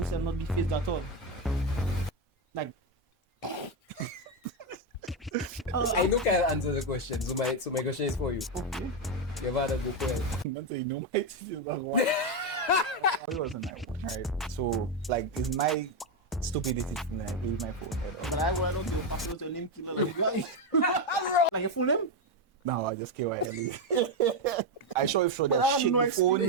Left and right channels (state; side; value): normal; both; correlation 0.07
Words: not be phased at all. Like, I know Kyle answer the question, so my question is for you. okay. Your father go Pwell. Man say, no, my teacher was one. It wasn't my one, right? So, like, it's my stupidity to like, leave my phone head But up. I don't give a fuck about your name killer. Like your full name? No, I just KYLE. I show if show But I that have shit no the phone.